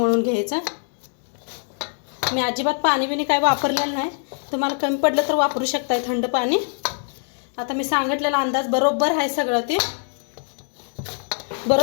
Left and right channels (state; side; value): silent; right; digital silence